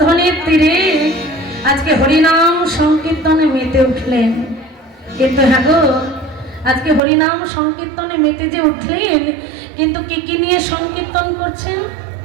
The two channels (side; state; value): left; drops out; at 7.0 s